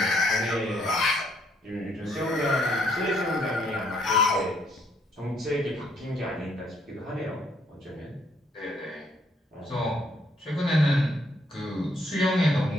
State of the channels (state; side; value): normal; both; correlation 0.69